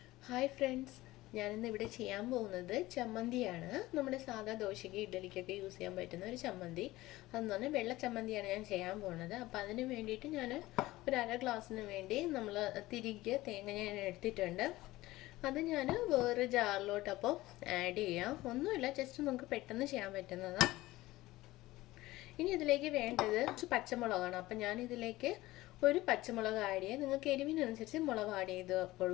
Hi friends, ഞാനിന്ന് ഇവിടെ ചെയ്യാൻ പോകുന്നത് ചമ്മന്തിയാണ്. നമ്മുടെ സാധാ ദോശയ്ക്ക് ഇഡ്ഡലിക്കൊക്കെ യൂസ് ചെയ്യാൻ പറ്റുന്ന ഒരു ചമ്മന്തി. അതെന്ന് പറഞ്ഞാൽ വെള്ള ചമ്മന്തിയാണ് ഞാൻ ചെയ്യാൻ പോകുന്നത്. അപ്പോൾ അതിന് വേണ്ടിയിട്ട് ഞാൻ ഒരു അര ഗ്ലാസ്സിന് വേണ്ടി നമ്മൾ തിരികെ തേങ്ങ ഞാൻ എടുത്തിട്ടുണ്ട്. അത് ഞാൻ വേറെ ജാറിലോട്ട് അപ്പോൾ ആഡ് ചെയ്യാം. ഒന്നുമില്ല, ജസ്റ്റ് നമുക്ക് പെട്ടെന്ന് ചെയ്യാൻ പറ്റുന്നതാണ്. ഇനി ഇതിലേക്ക് വേണ്ടത് പച്ചമുളകാണ്. അപ്പം ഞാൻ ഇതിലേക്ക് ഒരു പച്ചമുളക് ആഡ് ചെയ്യുക. നിങ്ങൾക്ക് എരിവിനനുസരിച്ച് മുളക് ആഡ് ചെയ്ത്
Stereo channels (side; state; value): right; quieter; 18.0 dB